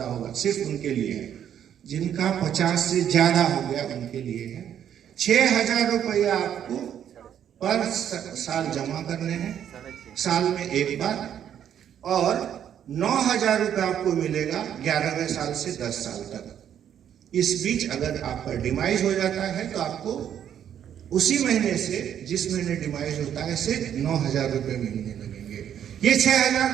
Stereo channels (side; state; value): left; quieter; 9.6 dB